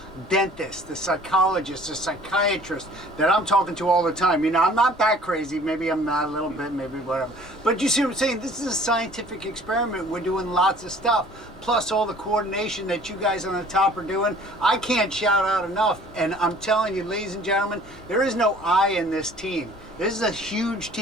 Dentists, the psychologists, the psychiatrists that I'm talking to all the time. I'm not that crazy. Maybe I'm not a little bit, maybe whatever. But you see what I'm saying? This is a scientific experiment. We're doing lots of stuff. Plus all the coordination that you guys on the top are doing. I can't shout out enough. And I'm telling you, ladies and gentlemen, there is no I in this team. This is a huge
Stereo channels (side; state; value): left; noise; rumble, 24 dB below the sound